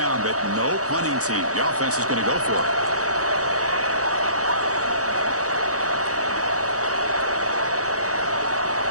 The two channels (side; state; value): left; late; 0.66 ms